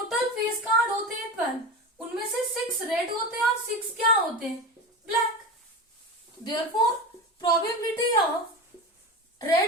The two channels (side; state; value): both; normal; correlation 0.25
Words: फेस कार्ड होते हैं 12, उनमें से 6 रेड होते हैं और 6 क्या होते हैं? Black. Therefore probability of